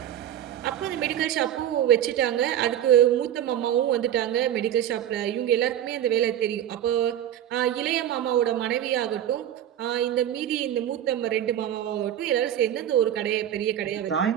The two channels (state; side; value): quieter; left; 11.0 dB